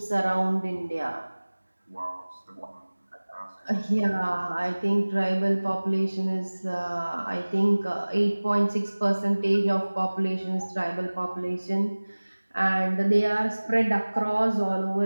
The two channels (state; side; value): inverted; both; correlation -1.00